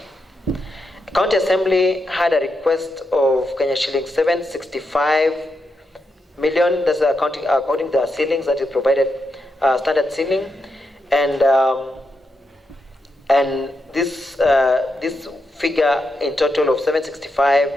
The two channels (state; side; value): normal; both; correlation 0.85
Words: County Assembly had a request of Kenya shillings 765 million. That's according to the ceilings that is provided, standard ceiling, and this figure in total of 765,